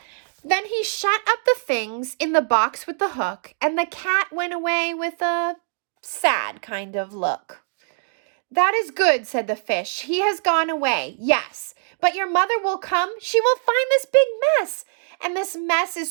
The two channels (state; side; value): silent; left; digital silence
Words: Then he shut up the things in the box with the hook, and the cat went away with a sad kind of look. "That is good," said the fish. "He has gone away, yes. But your mother will come. She will find this big mess. And this mess